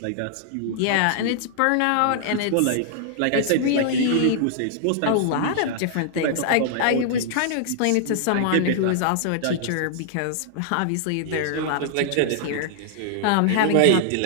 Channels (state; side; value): different; both; correlation -0.01